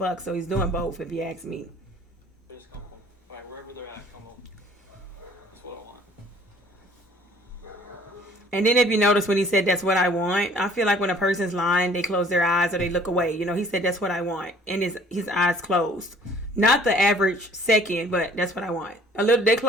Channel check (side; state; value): both; normal; correlation 0.55